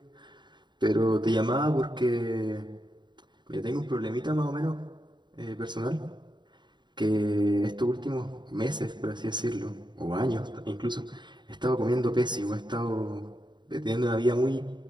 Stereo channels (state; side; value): late; left; 0.22 ms